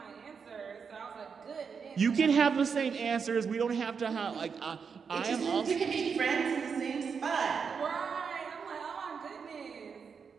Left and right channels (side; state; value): left; quieter; 6.0 dB